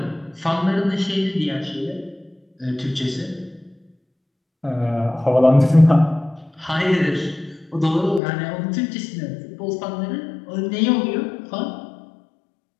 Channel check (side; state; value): right; drops out; at 8.2 s